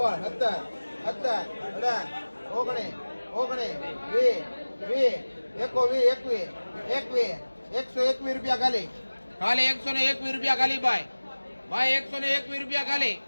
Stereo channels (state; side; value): inverted; both; correlation -1.00